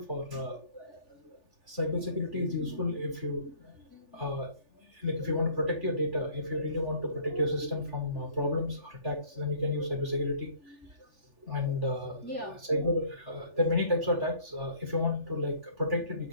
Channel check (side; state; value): left; late; 3.4 ms